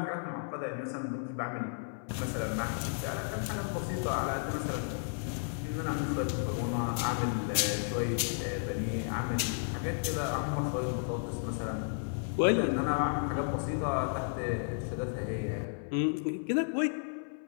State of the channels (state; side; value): silent; right; 56 dB below the other